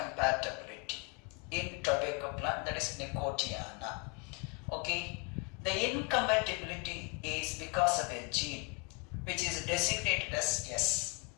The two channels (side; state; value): right; quieter; 31.9 dB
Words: in tobacco plant, that is Nicotiana. Okay, the incompatibility is because of a gene which is designated as S.